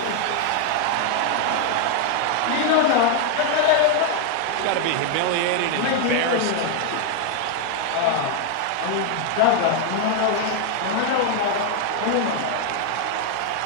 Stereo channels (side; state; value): both; different; correlation 0.00